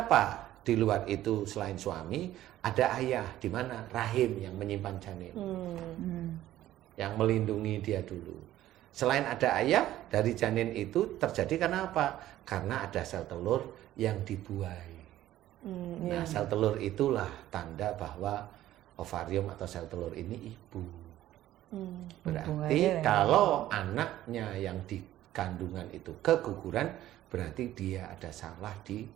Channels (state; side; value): quieter; left; 13.8 dB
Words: di luar itu selain suami ada ayah, di mana rahim yang menyimpan janin, yang melindungi dia dulu. Selain ada ayah, dari janin itu terjadi karena apa? Karena ada sel telur yang dibuai. Nah, sel telur itulah tanda bahwa ovarium atau sel telur ini ibu. Berarti kalau anaknya yang di kandungan itu keguguran, berarti dia ada salah di